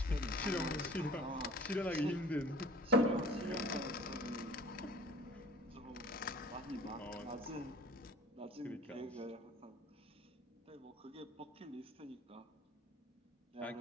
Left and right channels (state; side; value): normal; both; correlation 0.47